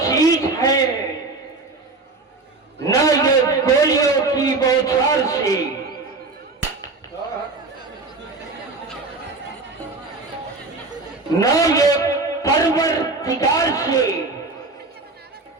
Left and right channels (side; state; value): left; quieter; 3.6 dB